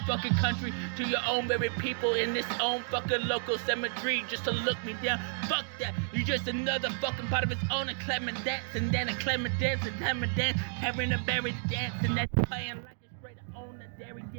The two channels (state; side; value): silent; left; digital silence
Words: fucking country, to your own very people in this own fucking local cemetery just to look me down. Fuck that. You just another fucking part of its own, a Clement dance, and then a Clement dance, and Clement dance, having a berry dance, and then you're playing like it's straight on the dairy